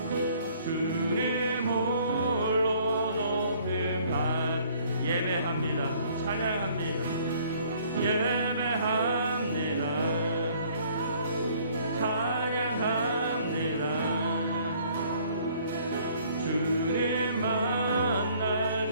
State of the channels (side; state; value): both; inverted; correlation -0.59